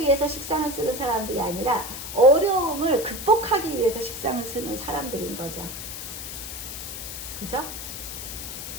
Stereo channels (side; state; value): left; noise; hiss, 8 dB below the sound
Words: 식상을 쓰는 사람들이 아니라 어려움을 극복하기 위해서 식상을 쓰는 사람들인 거죠. 그죠?